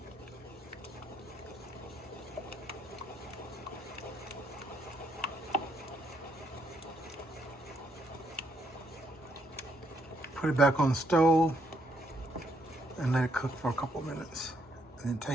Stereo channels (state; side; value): normal; both; correlation 0.73